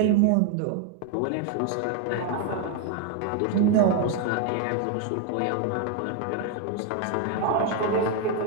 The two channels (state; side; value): different; both; correlation 0.01